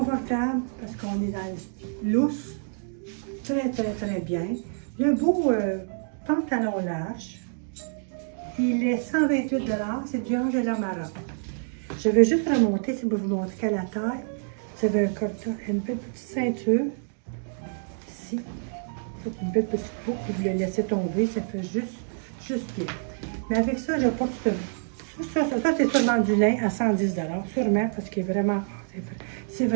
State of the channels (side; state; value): left; silent; digital silence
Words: parce qu'on est dans le lousse. Très, très, très bien. Le beau pantalon large. Il est 128 $. C'est du Angela Maroc. Je vais juste remonter, si vous montrer qu'à la taille, vous avez une petite ceinture. Ici. Une belle petite boucle, vous le laissez tomber, ça fait juste bien. Mais avec ça, je porte ça c'est sûrement du lin à 110 $, sûrement, parce qu'il est vraiment, c'est